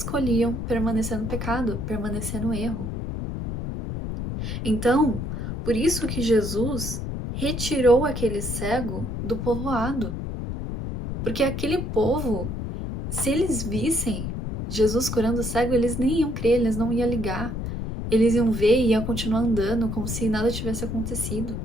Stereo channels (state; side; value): noise; left; rumble, 4 dB below the sound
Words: permanecer no pecado, permanecer no erro. Então, por isso que Jesus retirou aquele cego do povoado. Porque aquele povo, se eles vissem Jesus curando o cego, eles nem iam crer, eles não iam ligar. Eles iam ver e iam continuar andando como se nada tivesse acontecido.